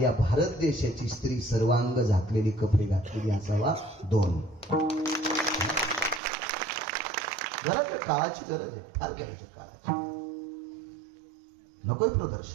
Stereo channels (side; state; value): left; drops out; at 6.2 s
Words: या भारत देशाची स्त्री सर्वांग झाकलेली कपडे घातलेली असावा 2. गरज आहे, काळाची गरज आहे, फार गरज आहे काळाची. नकोय